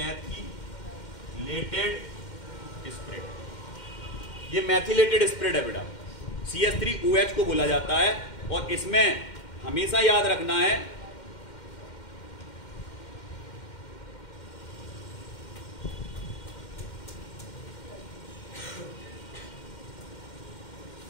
स्पिरिट। ये मैथिलेटेड स्पिरिट है बेटा, CH3OH को बोला जाता है। और इसमें हमेशा याद रखना है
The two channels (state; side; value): late; right; 2.1 ms